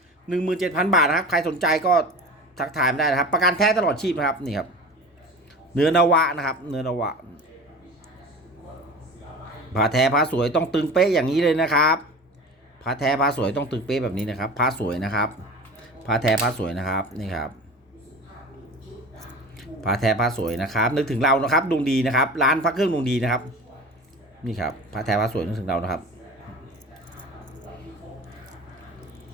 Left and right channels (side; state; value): both; normal; correlation 0.35